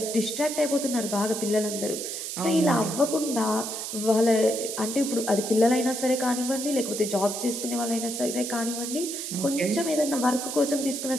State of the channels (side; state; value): right; noise; hiss, 5 dB below the sound